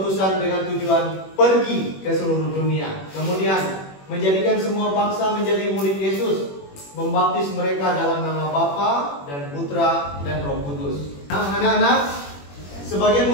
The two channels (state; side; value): late; right; 21 ms